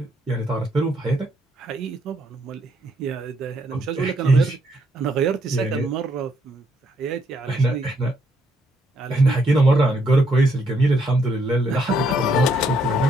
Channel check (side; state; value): both; normal; correlation 0.72